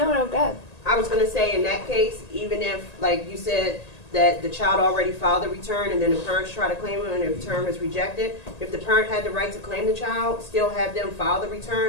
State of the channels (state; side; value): late; right; 1.8 ms